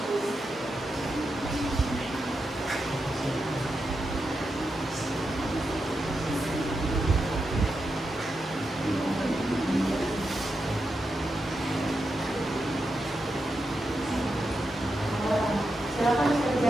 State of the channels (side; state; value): both; normal; correlation 0.87